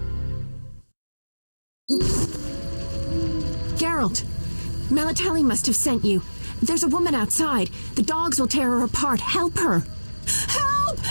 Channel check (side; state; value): both; inverted; correlation -1.00